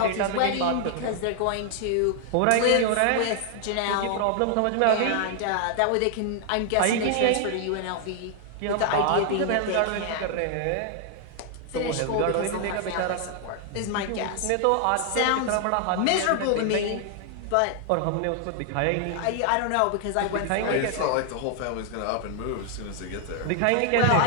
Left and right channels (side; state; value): both; different; correlation 0.00